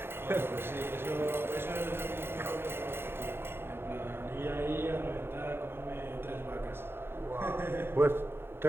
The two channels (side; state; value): left; late; 0.11 ms